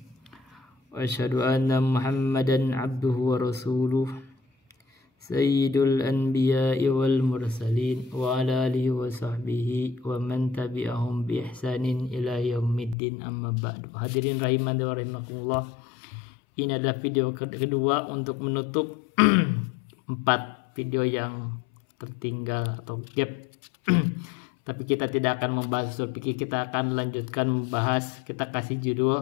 Wa asyhadu anna Muhammadan abduhu wa rasuluh sayyidul anbiya'i wal mursalin wa ala alihi wa sahbihi wa man tabi'ahum bi ihsanin ila yaumiddin, amma ba'du. Hadirin rahiman wa rahimakumullah. Ini adalah video kedua untuk menutup 4 video yang tertinggal atau gap. Tapi kita tidak akan membahas usul fikih, kita akan lanjutkan membahas, kita kasih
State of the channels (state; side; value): drops out; right; at 13.0 s